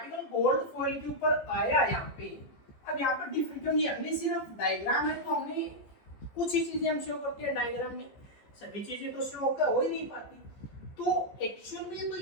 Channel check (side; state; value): right; late; 14 ms